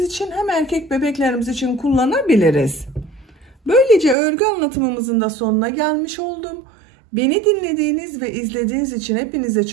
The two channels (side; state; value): left; drops out; at 4.2 s